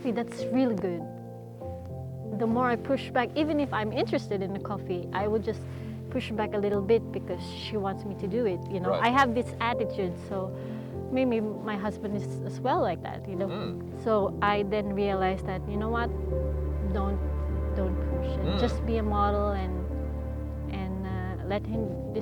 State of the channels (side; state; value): both; identical; correlation 1.00